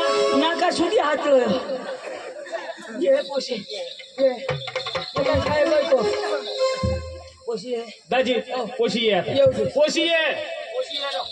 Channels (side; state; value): both; identical; correlation 1.00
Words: नाका सुधी हात ये पोशी ये काय बोलतो पोशी दाजी पोशी ये आता. येऊ दे. पोशी ये